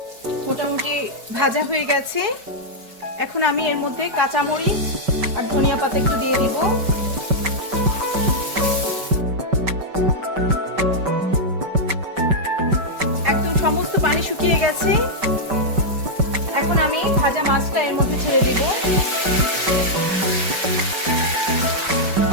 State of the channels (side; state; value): left; late; 5.2 ms